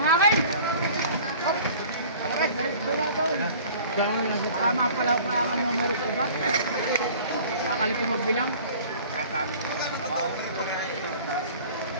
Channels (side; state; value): both; inverted; correlation -0.46